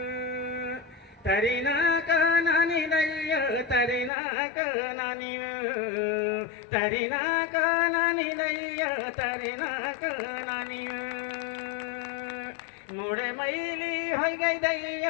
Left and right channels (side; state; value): right; drops out; at 4.1 s